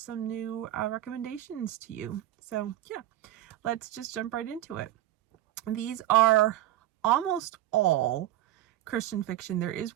new recommendations to you. So yeah, let's just jump right into it. These are almost all Christian fiction. There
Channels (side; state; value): left; quieter; 13.8 dB